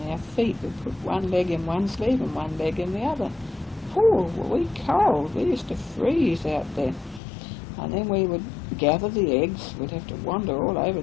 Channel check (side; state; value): right; drops out; at 7.2 s